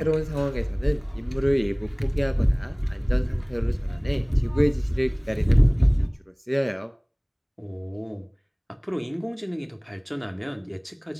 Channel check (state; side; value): identical; both; correlation 1.00